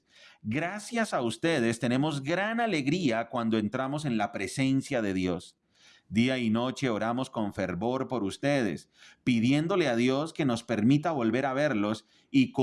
Gracias a ustedes tenemos gran alegría cuando entramos en la presencia de Dios. Día y noche oramos con fervor por ustedes, pidiéndole a Dios que nos permita volver a verlos y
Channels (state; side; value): identical; both; correlation 1.00